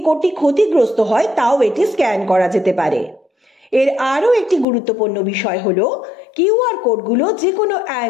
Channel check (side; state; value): right; drops out; at 4.7 s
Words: কোডটি ক্ষতিগ্রস্ত হয় তাও এটি স্ক্যান করা যেতে পারে। এর আরও একটি গুরুত্বপূর্ণ বিষয় হলো কিউআর কোডগুলো যে কোনো